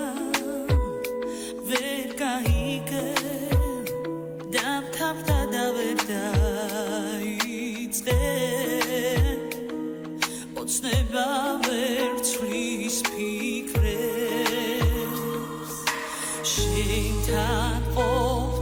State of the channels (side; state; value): both; identical; correlation 1.00